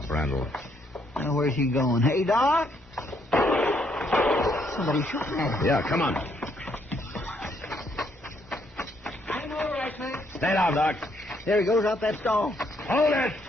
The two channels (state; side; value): normal; both; correlation 0.72